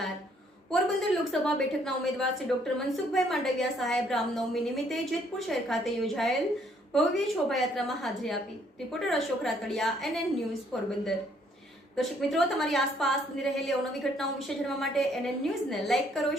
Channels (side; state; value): both; normal; correlation 0.66